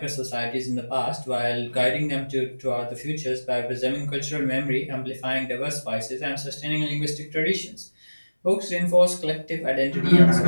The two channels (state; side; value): inverted; both; correlation -1.00